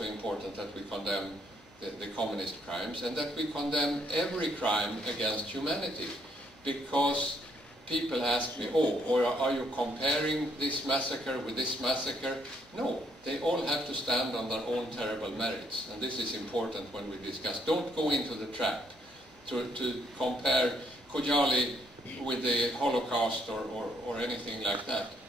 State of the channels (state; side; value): normal; both; correlation 0.68